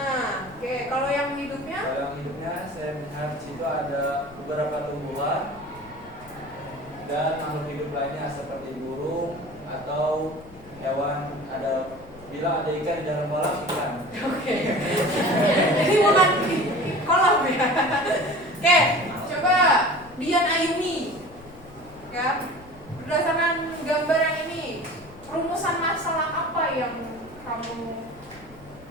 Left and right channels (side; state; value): left; noise; rumble, 21 dB below the sound